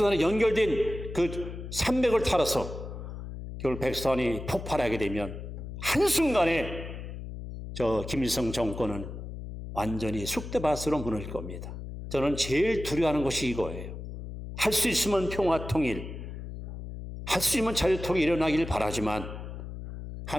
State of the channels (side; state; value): left; noise; hum, 9 dB below the sound